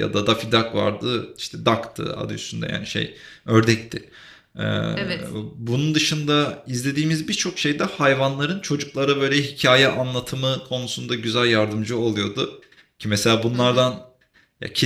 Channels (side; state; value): both; identical; correlation 1.00